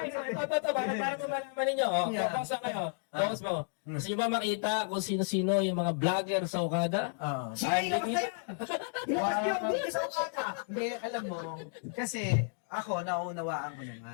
so ito, para malaman ninyo. Focus lang kayo. Focus mo. Gusto nyo ba makita kung sino-sino yung mga vlogger sa Okada? Sige, kapatid! Hindi sa ukada. Hindi, alam mo, kasi ako, naunawaan ko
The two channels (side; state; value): right; silent; digital silence